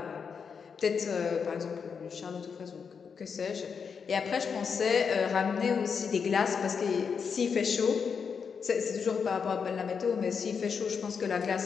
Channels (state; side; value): quieter; right; 6.2 dB